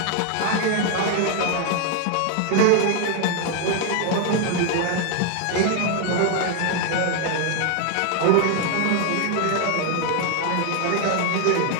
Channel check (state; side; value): different; both; correlation 0.00